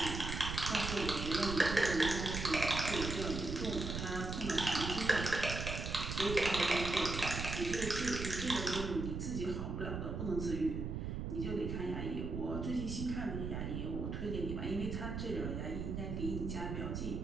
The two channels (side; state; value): right; noise; rumble, 4 dB below the sound